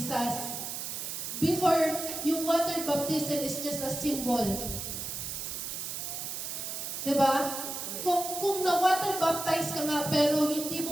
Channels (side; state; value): right; noise; hiss, 5 dB below the sound